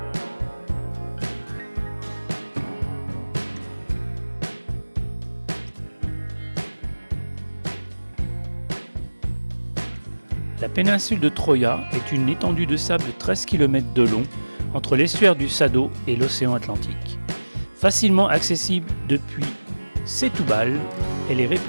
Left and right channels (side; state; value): both; inverted; correlation -1.00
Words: La péninsule de Troia est une étendue de sable de 13 km de long entre l'estuaire du Sado et l'océan Atlantique. Facilement accessible depuis Setúbal, elle est